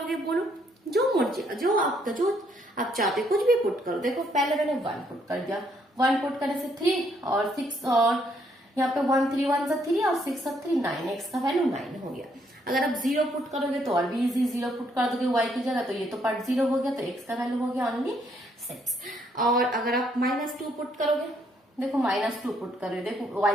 बोलो, जो मर्जी, जो आप चाहते कुछ भी पुट करो। देखो पहले मैंने 1 पुट कर दिया, 1 पुट करने से 3 और 6 और यहाँ पे 1 3 1 से 3 और 6 और 3 9, एक्स का वैल्यू 9 हो गया। अगर आप 0 पुट करोगे तो और भी इजी, 0 पुट कर दोगे y की जगह तो ये तो पार्ट 0 हो गया, तो x का वैल्यू हो गया ओनली 6। और अगर आप -2 पुट करोगे, देखो -2 पुट करोगे, देखो y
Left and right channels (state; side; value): normal; both; correlation 0.71